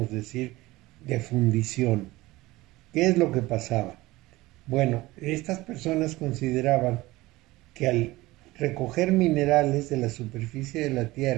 decir de fundición. ¿Qué es lo que pasaba? Bueno, estas personas consideraban que al recoger minerales de la superficie de la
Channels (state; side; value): quieter; left; 19.4 dB